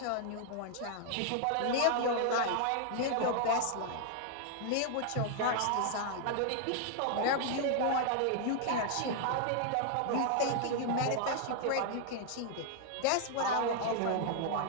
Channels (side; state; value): both; different; correlation 0.00